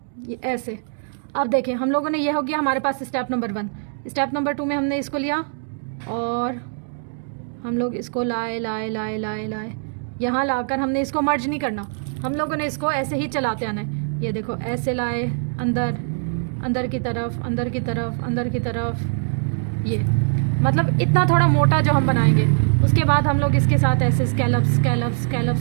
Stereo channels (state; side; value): silent; left; digital silence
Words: ये ऐसे। अब देखें हम लोगों ने, ये हो गया हमारे पास स्टेप नंबर 1। स्टेप नंबर 2 में हमने इसको लिया और हम लोग इसको लाए लाए लाए लाए लाए, यहाँ लाकर हमने इसको मर्ज नहीं करना, हम लोगों ने इसको ऐसे ही चलाते आना है। ये देखो ऐसे लाए, अंदर अंदर की तरफ, अंदर की तरफ, अंदर की तरफ, ये मतलब इतना थोड़ा मोटा जो हम बनाएंगे। उसके बाद हम लोग इसके साथ ऐसे